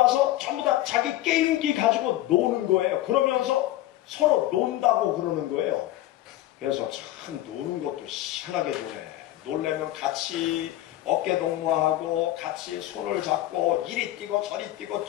전부 다 자기 게임기 가지고 노는 거예요. 그러면서 서로 논다고 그러는 거예요. 그래서 참 노는 것도 희한하게 노네. 놀려면 같이 어깨 동무하고 같이 손을 잡고 이리 뛰고 저리 뛰고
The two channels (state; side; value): quieter; right; 14.9 dB